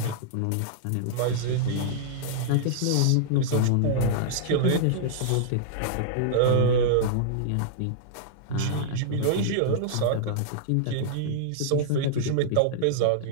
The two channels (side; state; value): both; different; correlation -0.01